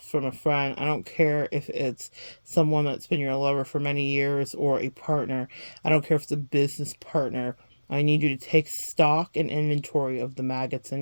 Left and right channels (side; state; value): both; inverted; correlation -1.00